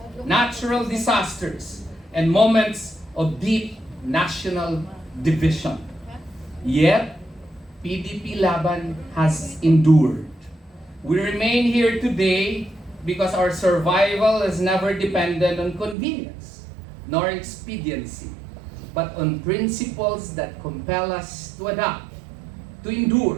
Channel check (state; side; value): drops out; left; at 16.0 s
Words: natural disasters, and moments of deep national division. Yet, PDP Laban has endured. We remain here today because our survival has never depended on convenience nor expediency, but on principles that compel us to adapt, to